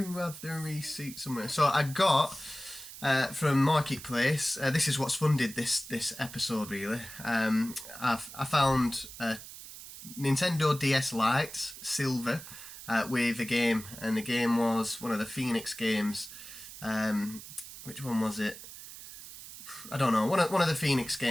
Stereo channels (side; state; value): right; noise; hiss, 14 dB below the sound